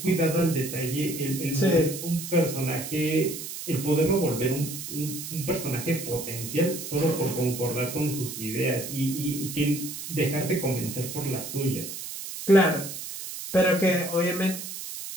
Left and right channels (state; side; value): noise; right; hiss, 8 dB below the sound